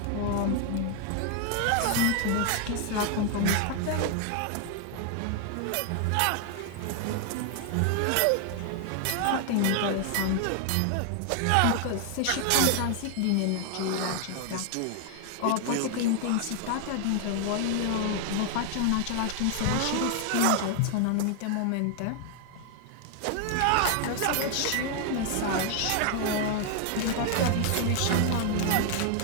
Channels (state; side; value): different; both; correlation 0.00